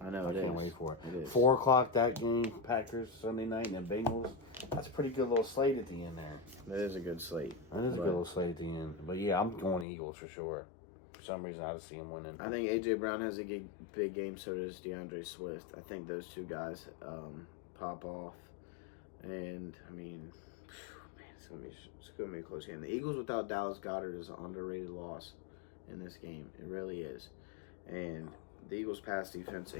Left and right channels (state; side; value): drops out; right; at 9.9 s